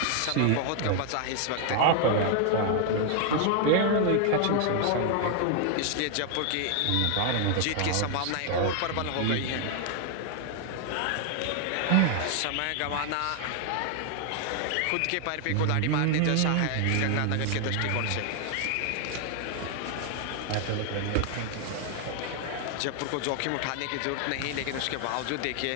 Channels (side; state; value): both; different; correlation 0.00